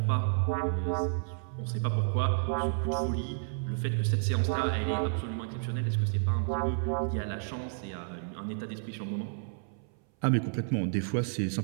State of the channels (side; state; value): left; silent; 57 dB below the other